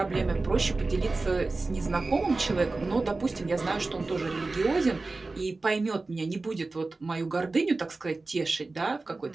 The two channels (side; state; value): left; quieter; 3.5 dB